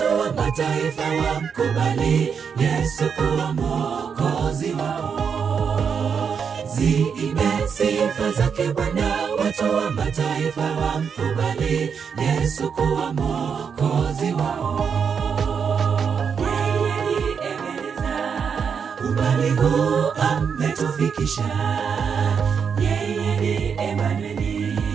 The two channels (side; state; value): left; quieter; 6.6 dB